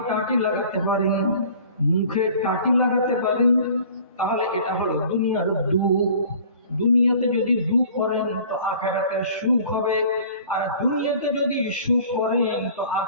টাটি লাগাতে পারেন, মুখে টাটি লাগাতে পারেন, তাহলে এটা হলো দুনিয়ার দুঃখ। দুনিয়াতে যদি দুঃখ করেন তো আখিরাতে সুখ হবে, আর দুনিয়াতে যদি সুখ করেন তো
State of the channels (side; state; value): both; inverted; correlation -0.48